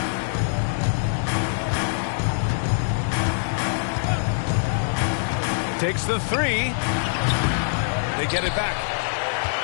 Takes the 3. They get it back.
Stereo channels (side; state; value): right; silent; digital silence